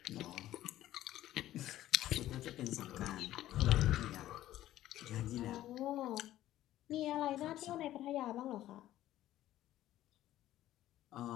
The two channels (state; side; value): quieter; right; 13.9 dB